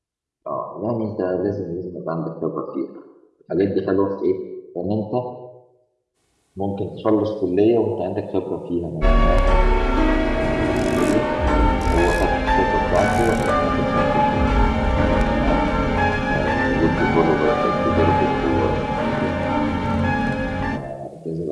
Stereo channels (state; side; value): identical; both; correlation 1.00